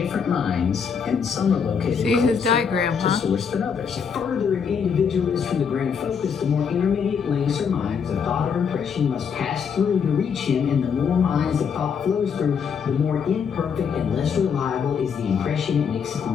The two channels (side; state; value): right; quieter; 6.6 dB